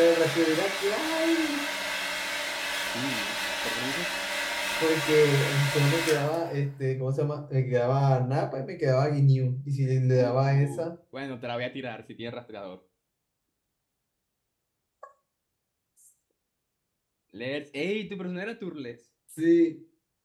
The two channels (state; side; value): identical; both; correlation 1.00